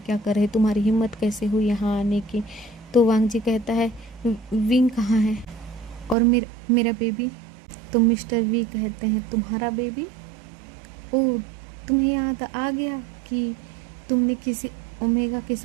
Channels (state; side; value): drops out; left; at 6.2 s